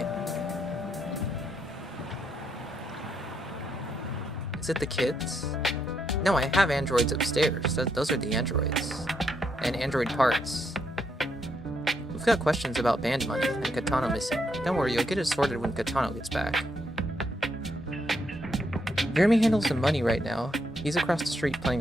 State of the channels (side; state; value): both; normal; correlation 0.77